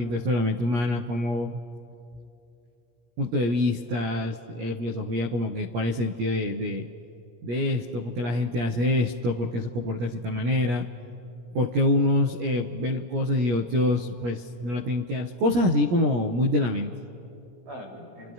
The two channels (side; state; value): left; late; 17 ms